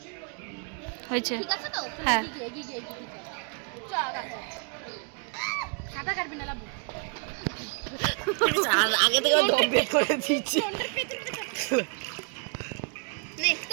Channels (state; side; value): quieter; left; 38.8 dB